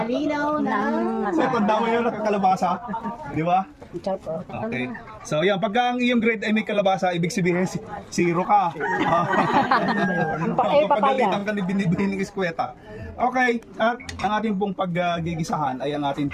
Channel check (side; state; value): both; identical; correlation 1.00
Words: na. So, tanda mo yun nakakalabasa. Di ba? Okay. So, yan. Pagka ang iyong grade ay may kalabasa, ibig sabihin, zero ka. Pagalitan ka ni binibihin ng eskweta. Okay. At ang ating pong paggigisahan ay ang ating